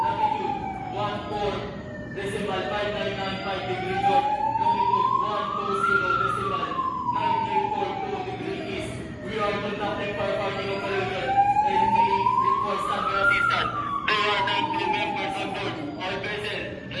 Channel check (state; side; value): identical; both; correlation 1.00